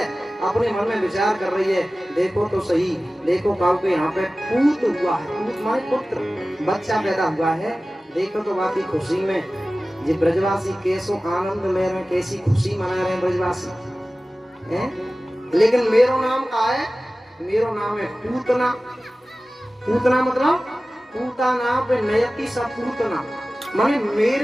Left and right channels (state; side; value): normal; both; correlation 0.96